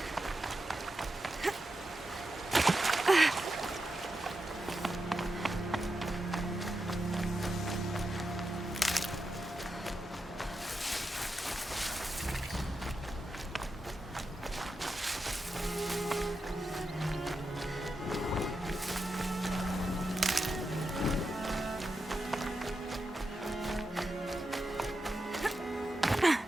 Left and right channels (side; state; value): both; normal; correlation 0.88